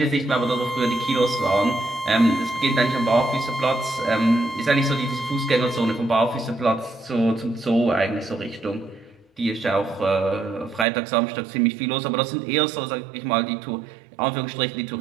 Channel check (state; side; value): drops out; left; at 10.9 s